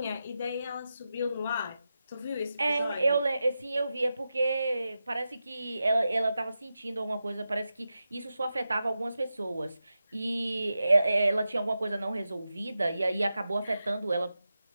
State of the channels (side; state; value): both; inverted; correlation -0.91